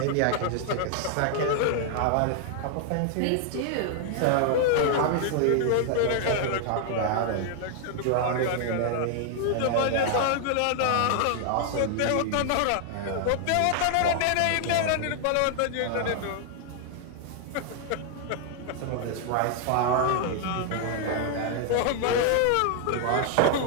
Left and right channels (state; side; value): different; both; correlation 0.00